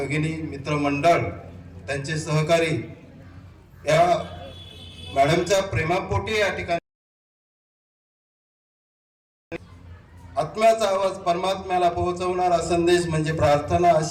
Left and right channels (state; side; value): identical; both; correlation 1.00